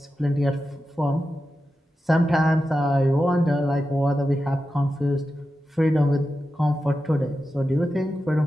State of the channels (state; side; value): normal; both; correlation 0.91